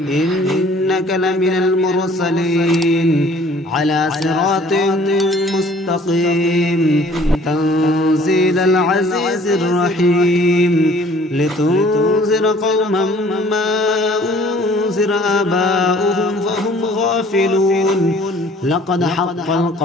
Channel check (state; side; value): normal; both; correlation 0.54